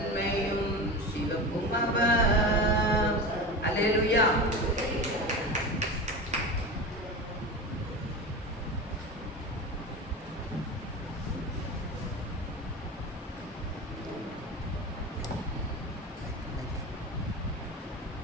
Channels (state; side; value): normal; both; correlation 0.27